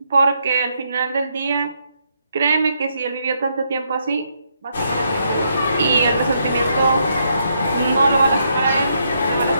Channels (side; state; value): both; inverted; correlation -0.76